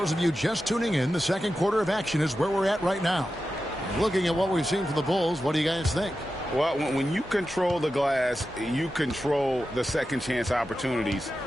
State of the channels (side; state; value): both; normal; correlation 0.92